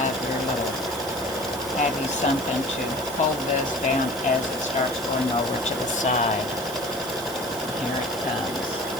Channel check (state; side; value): noise; right; hiss, 13 dB below the sound